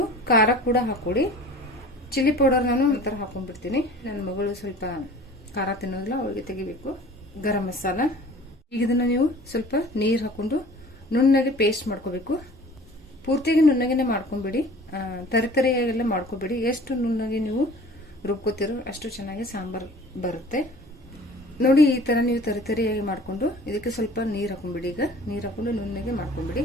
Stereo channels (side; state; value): both; normal; correlation 0.45